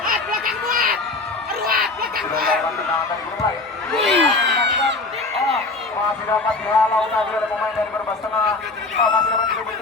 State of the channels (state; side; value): quieter; right; 3.5 dB